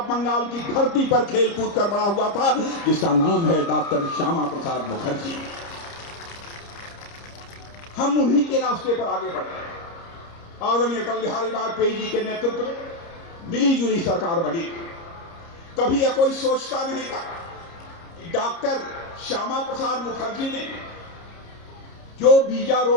बंगाल की धरती पर खेल कूद कर बड़ा हुआ था, जिसका नाम है डॉक्टर श्यामा प्रसाद मुखर्जी। हम उन्हीं के रास्ते पर आगे बढ़ रहे। आदरणीय अटल बिहारी वाजपेयी जी के नेतृत्व में मिली जुली सरकार बनी। कभी यह कोई सोचता नहीं था कि डॉक्टर श्यामा प्रसाद मुखर्जी ने जो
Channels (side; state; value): right; late; 30 ms